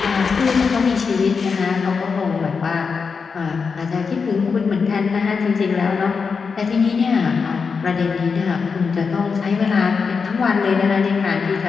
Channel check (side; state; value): right; quieter; 5.3 dB